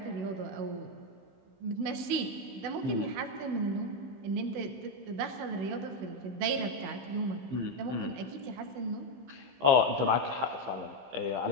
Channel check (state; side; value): late; left; 16 ms